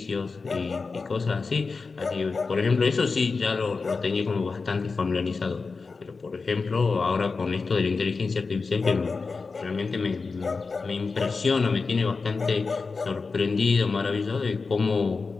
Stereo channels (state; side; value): quieter; right; 4.4 dB